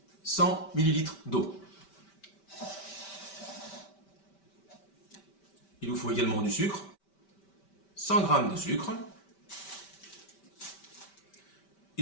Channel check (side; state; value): right; late; 5.1 ms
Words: 100 ml d'eau. Il vous faut également du sucre, 100 g de sucre.